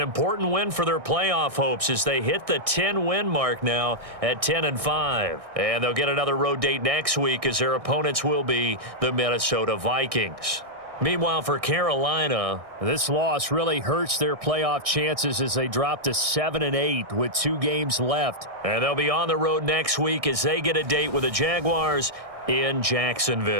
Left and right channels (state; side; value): late; left; 1.6 ms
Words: win for their playoff hopes as they hit the 10-win mark now at 10-5. And they'll get another road date next week as their opponents will be the Minnesota Vikings. Meanwhile, for Carolina, this loss really hurts their playoff chances as they drop to 7-8 with 2 games left. And they'll be on the road next week as they get a date with the Jaguars in